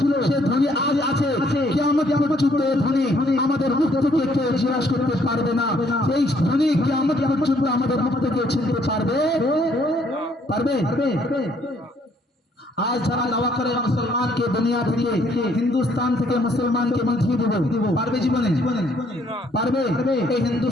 সে ধ্বনি আজ আছে, কিয়ামত পর্যন্ত এই ধ্বনি আমাদের মুখ থেকে কেউ জিজ্ঞাসা করতে পারবে না। সেই ধ্বনি কিয়ামত পর্যন্ত আমাদের মুখ থেকে ছিনতে পারবে। आज যারা দাওয়া করে মুসলমানকে দুনিয়া থেকে হিন্দুস্তান থেকে মুসলমানকে মিটিয়ে দেব, পারবে জীবনে? পারবে? এই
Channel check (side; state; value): both; normal; correlation 0.66